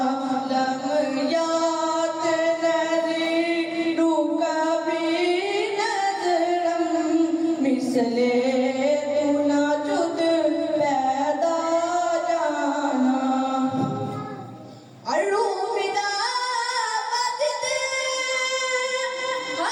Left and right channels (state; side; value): identical; both; correlation 1.00